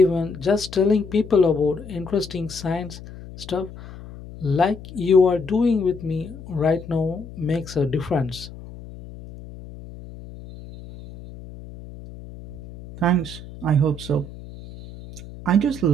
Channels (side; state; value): left; noise; hum, 15 dB below the sound